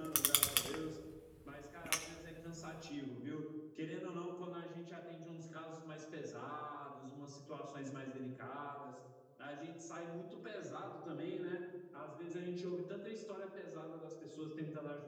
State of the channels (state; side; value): identical; both; correlation 1.00